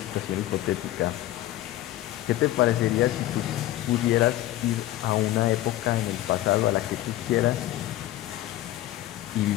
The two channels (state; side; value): quieter; right; 14.7 dB